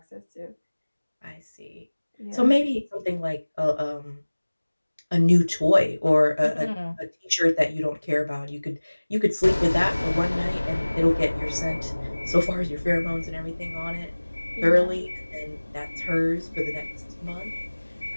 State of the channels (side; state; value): both; inverted; correlation -1.00